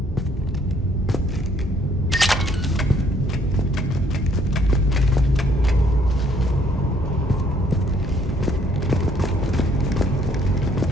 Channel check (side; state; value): both; normal; correlation 0.65